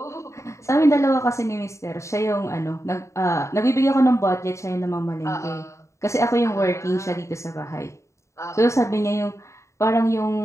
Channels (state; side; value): late; right; 0.14 ms